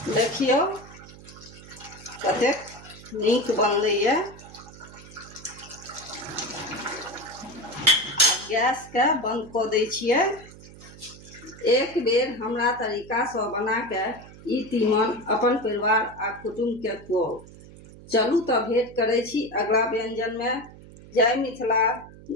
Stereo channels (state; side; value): noise; right; hum, 19 dB below the sound